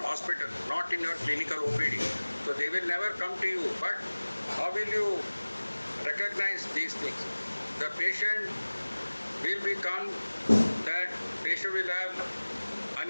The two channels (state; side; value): inverted; both; correlation -1.00